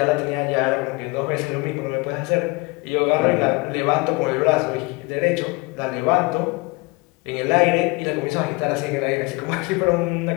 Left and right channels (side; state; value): right; quieter; 25.8 dB